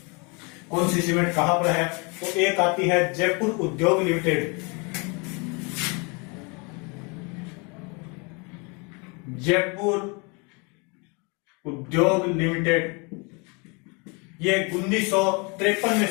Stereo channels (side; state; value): right; quieter; 31.3 dB